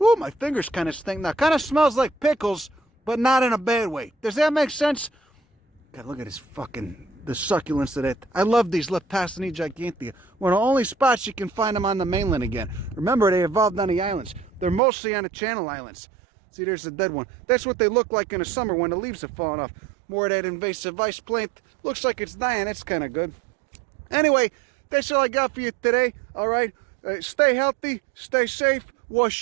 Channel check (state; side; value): drops out; left; at 14.8 s